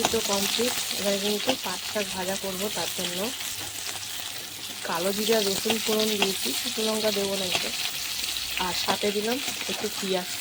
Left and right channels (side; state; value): both; identical; correlation 1.00